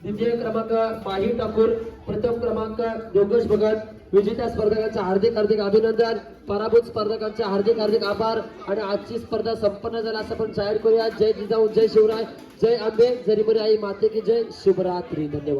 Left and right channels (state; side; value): identical; both; correlation 1.00